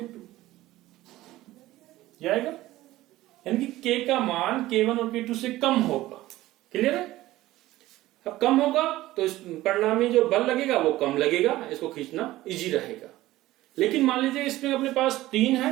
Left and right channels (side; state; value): left; quieter; 16.5 dB